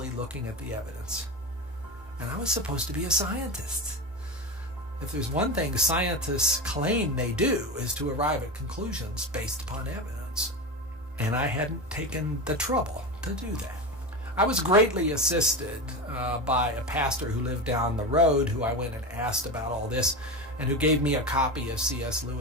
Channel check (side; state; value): both; normal; correlation 0.21